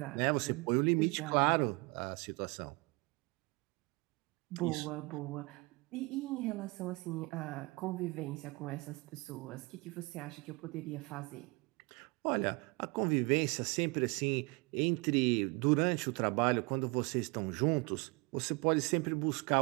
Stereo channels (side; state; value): left; quieter; 27.2 dB